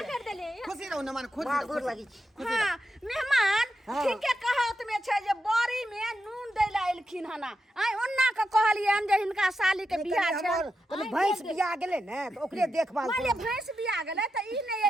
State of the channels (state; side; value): normal; both; correlation 0.87